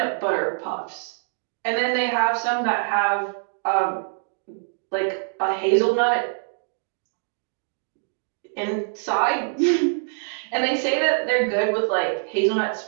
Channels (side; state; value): left; silent; 62 dB below the other